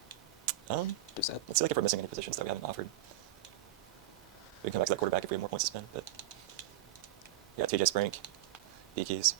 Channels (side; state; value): left; quieter; 12.7 dB